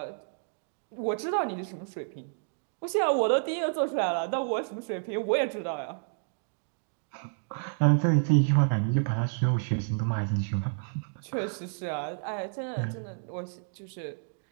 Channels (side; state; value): left; silent; digital silence